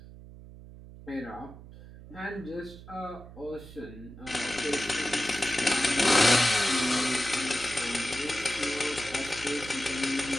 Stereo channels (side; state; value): right; noise; hum, 17 dB below the sound